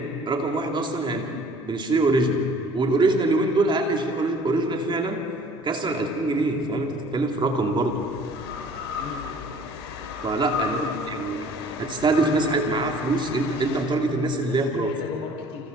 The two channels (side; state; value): both; normal; correlation 0.52